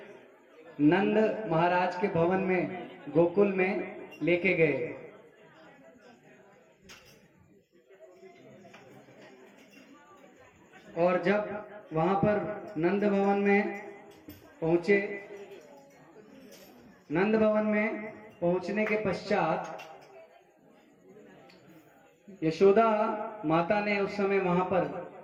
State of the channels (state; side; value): identical; both; correlation 1.00